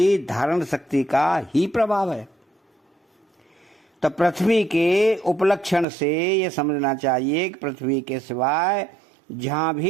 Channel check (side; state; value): left; drops out; at 5.9 s